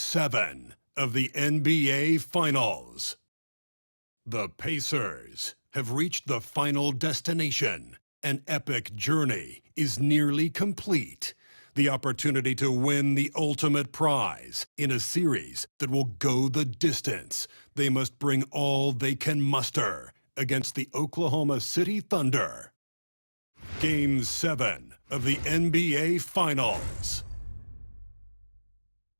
of the NBA Finals. The Pacers have reached the final destination. An epic journey is nearly complete. The opportunity to win the ultimate prize in a series that will go the distance. They must bring all they can muster against the Oklahoma City Thunder. Game 7 of the NBA Finals.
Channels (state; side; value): inverted; both; correlation -1.00